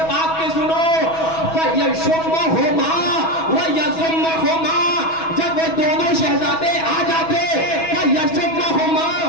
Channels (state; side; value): late; right; 6.2 ms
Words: پاک کے سنو، فَيَشُمَّهُمَا وَيَزُمَّهُمَا، جب وہ دونوں شہزادے آ جاتے فَيَشُمَّهُمَا،